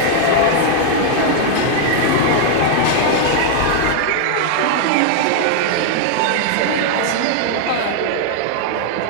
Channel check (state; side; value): different; both; correlation 0.00